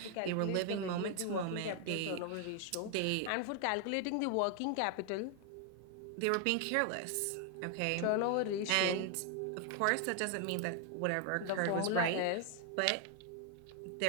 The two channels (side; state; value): both; different; correlation 0.00